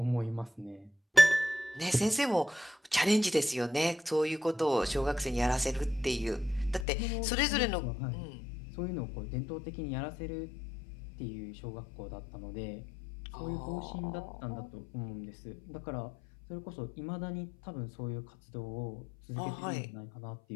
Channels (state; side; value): drops out; right; at 6.9 s